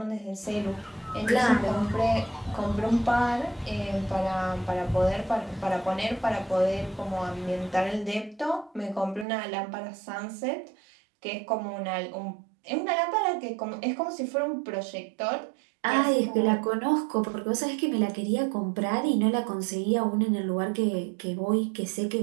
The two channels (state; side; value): drops out; left; at 9.2 s